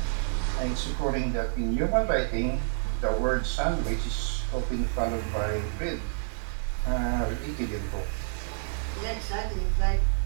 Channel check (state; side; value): silent; left; digital silence